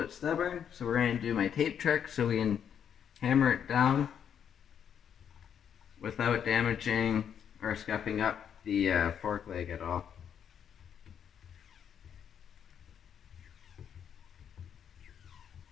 stubborn, so we're going to do my tape trick so we can hammer it down without damaging or scuffing up the fork leg at all.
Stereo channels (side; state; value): right; quieter; 8.4 dB